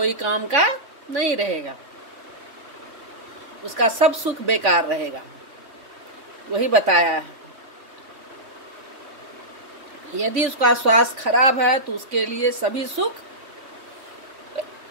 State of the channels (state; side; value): late; left; 3.5 ms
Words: काम का नहीं रहेगा, उसका सब सुख बेकार रहेगा। वही बताया है। यदि उसका स्वास्थ्य खराब है तो उसके लिए सभी सुख